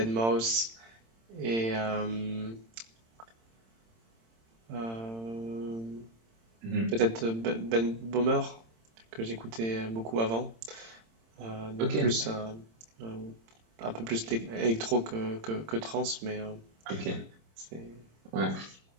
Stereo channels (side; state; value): left; late; 26 ms